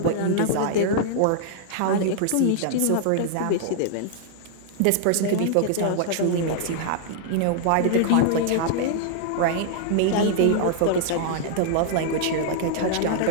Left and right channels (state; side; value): different; both; correlation -0.01